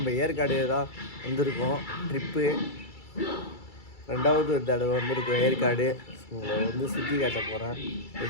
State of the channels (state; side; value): late; right; 2.3 ms